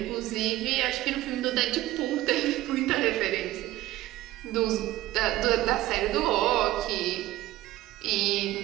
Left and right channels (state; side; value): quieter; left; 15.9 dB